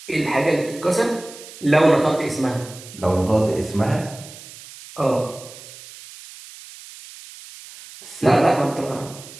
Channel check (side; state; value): right; noise; hiss, 17 dB below the sound